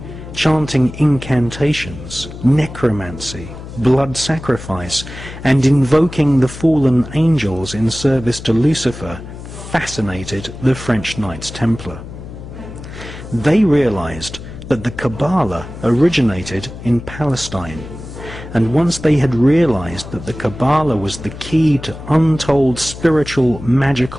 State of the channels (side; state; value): left; noise; hum, 13 dB below the sound